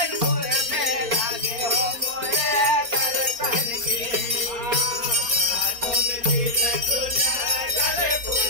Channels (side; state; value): left; late; 4.2 ms